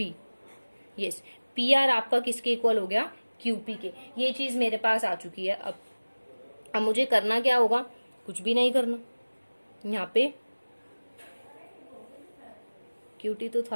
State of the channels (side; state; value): both; inverted; correlation -1.00